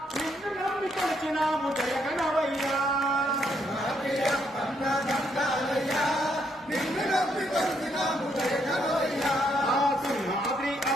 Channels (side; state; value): both; normal; correlation 0.74